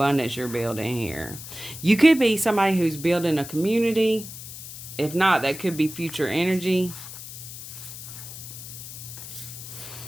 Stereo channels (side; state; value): left; noise; hiss, 12 dB below the sound